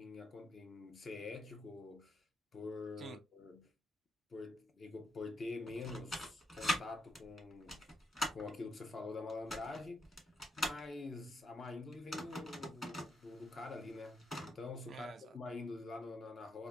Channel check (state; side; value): normal; both; correlation 0.79